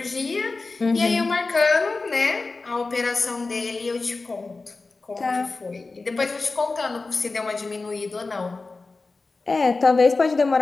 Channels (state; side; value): quieter; right; 3.7 dB